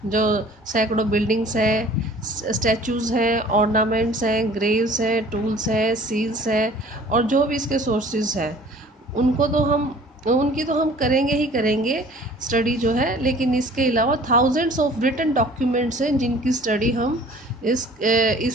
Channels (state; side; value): normal; both; correlation 0.50